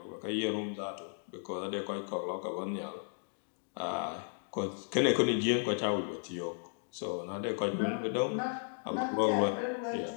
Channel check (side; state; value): right; silent; digital silence